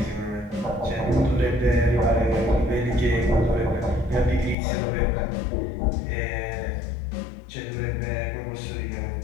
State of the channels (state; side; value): drops out; right; at 4.5 s